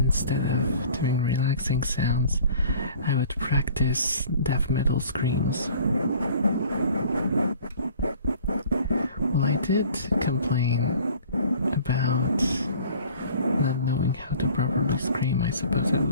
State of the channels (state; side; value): inverted; both; correlation -0.49